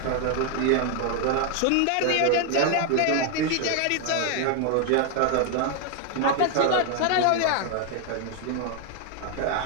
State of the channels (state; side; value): different; both; correlation 0.00